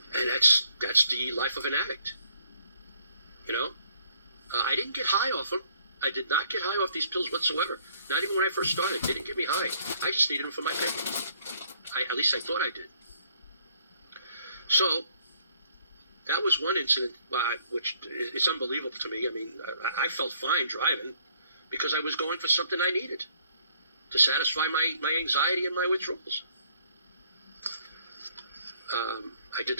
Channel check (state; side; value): inverted; both; correlation -0.64